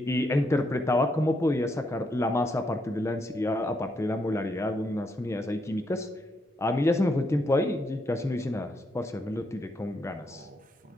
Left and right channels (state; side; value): normal; both; correlation 0.78